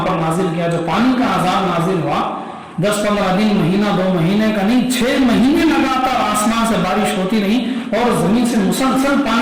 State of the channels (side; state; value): both; identical; correlation 1.00